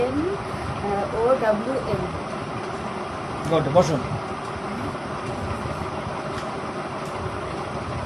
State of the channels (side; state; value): both; identical; correlation 1.00